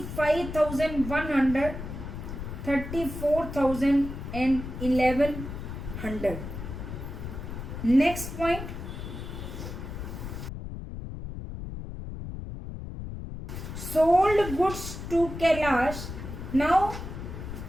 34,000 and 1,100. Next point, sold goods to Kailash. Now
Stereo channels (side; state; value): left; noise; rumble, 8 dB below the sound